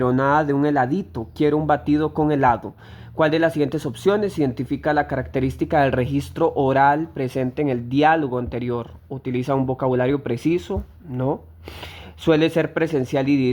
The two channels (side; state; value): both; identical; correlation 1.00